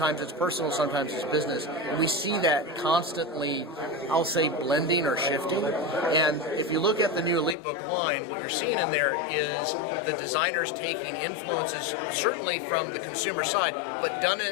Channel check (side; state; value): right; drops out; at 7.6 s